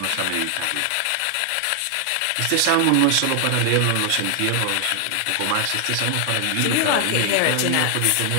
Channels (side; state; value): both; different; correlation 0.00